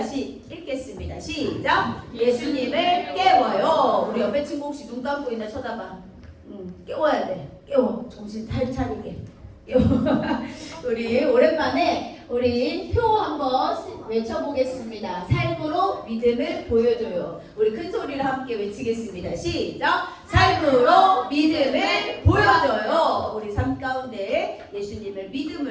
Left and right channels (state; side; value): identical; both; correlation 1.00